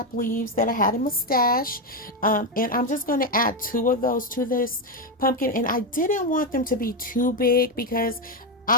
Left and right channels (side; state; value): both; normal; correlation 0.08